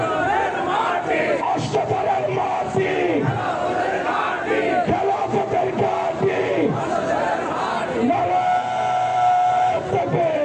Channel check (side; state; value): both; identical; correlation 1.00